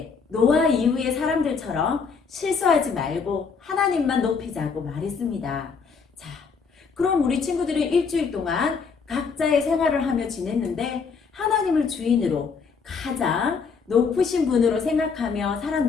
노아 이후의 사람들처럼 실수하지 말고 하나님만 높이자고 말했습니다. 자, 그럼 우리 친구들은 일주일 동안 각자의 생활을 하며 지냈는데 하나님을 주인으로 가장 높으신 분으로 생각하며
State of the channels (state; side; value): quieter; right; 5.4 dB